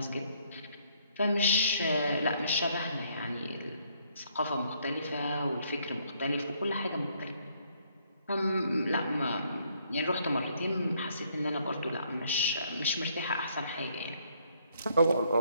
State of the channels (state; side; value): inverted; both; correlation -0.68